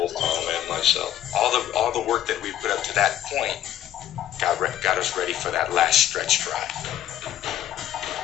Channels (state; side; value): quieter; right; 11.9 dB